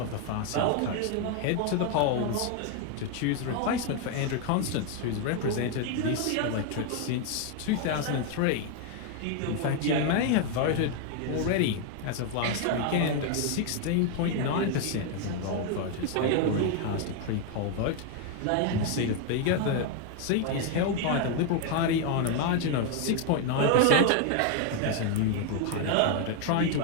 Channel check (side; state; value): both; different; correlation 0.01